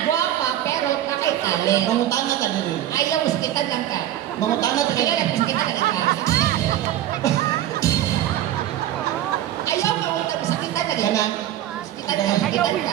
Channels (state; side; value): quieter; left; 12.3 dB